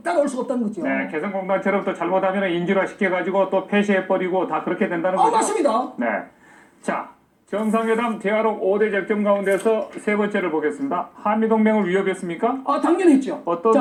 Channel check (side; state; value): both; identical; correlation 1.00